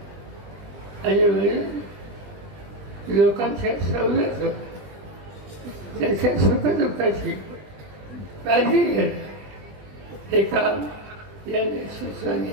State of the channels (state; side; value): late; left; 20 ms